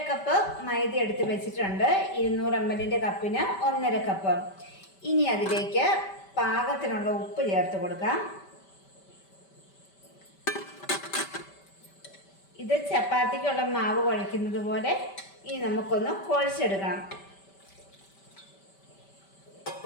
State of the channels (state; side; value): late; right; 5.1 ms